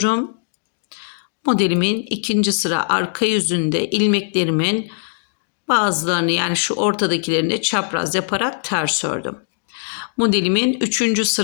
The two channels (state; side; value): silent; right; 65 dB below the other